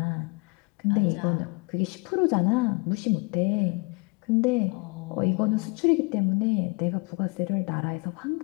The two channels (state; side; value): quieter; right; 30.0 dB